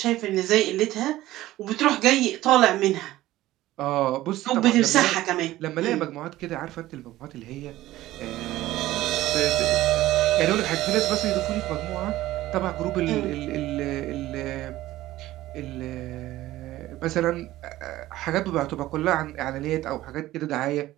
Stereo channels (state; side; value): quieter; left; 15.9 dB